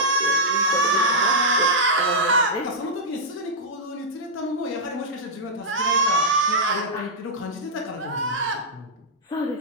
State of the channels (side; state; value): both; normal; correlation -0.09